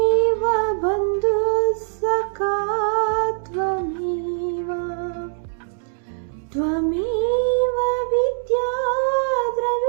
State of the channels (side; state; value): left; silent; digital silence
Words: बन्धुः सखा त्वमेव त्वमेव विद्या